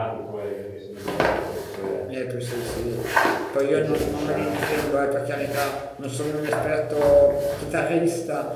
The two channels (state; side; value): identical; both; correlation 1.00